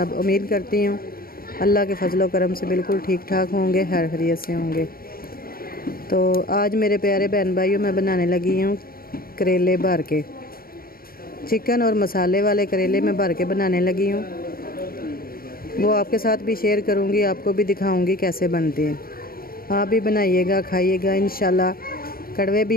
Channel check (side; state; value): right; late; 0.43 ms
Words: उम्मीद करती हूँ अल्लाह के फजलो करम से बिल्कुल ठीक ठाक होंगे, खैर खैरियत से होंगे। तो आज मेरे प्यारे बहन भाइयों मैं बनाने लगी हूँ करेले भर के, चिकन और मसाले वाले करेले मैं भर के बनाने लगी हूँ। वो आपके साथ भी शेयर करूँगी, आपको भी दिखाऊँगी कैसे बनते हैं। आप भी बनाइएगा, खाइएगा, इंशाल्लाह कड़वे